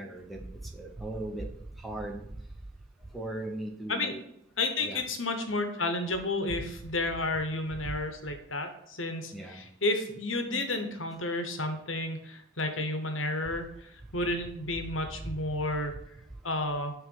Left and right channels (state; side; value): normal; both; correlation 0.22